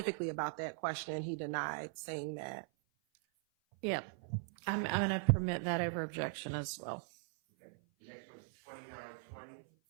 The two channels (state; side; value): silent; left; 51 dB below the other